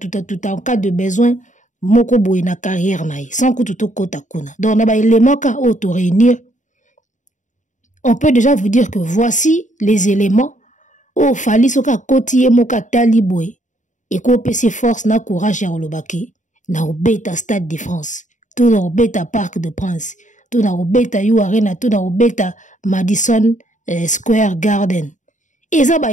en cas de besoin moko boy na carrière na sans kututo kota kuna. Donc na ba éléments ka auto réunir. On peut déjà vous dire que voici les éléments. Oh, fali soka koti moka talibwe. Et ko pese force na courage ya olobaki. Na obeta Stade de France. Tout na obeta Parc de Prince. Tout na obeta You Arena. Tout na obeta Madison Square Garden. Et ça ba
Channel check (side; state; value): right; late; 0.36 ms